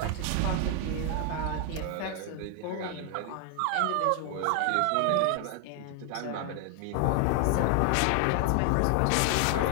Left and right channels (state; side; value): different; both; correlation 0.00